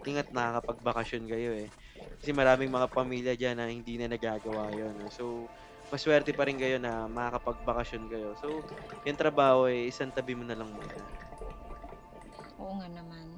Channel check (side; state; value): both; identical; correlation 1.00